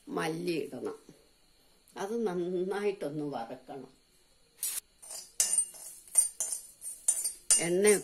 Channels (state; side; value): identical; both; correlation 1.00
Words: മല്ലി ഇടണം. അത് നന്നായിട്ടൊന്ന് വറക്കണം.